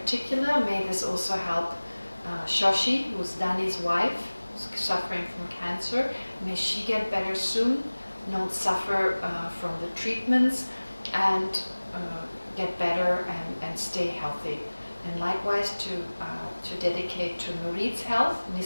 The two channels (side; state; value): both; inverted; correlation -1.00